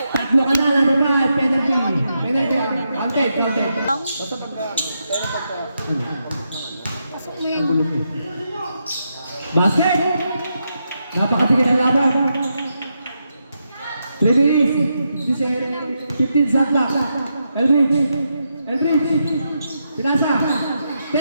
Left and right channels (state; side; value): inverted; both; correlation -0.83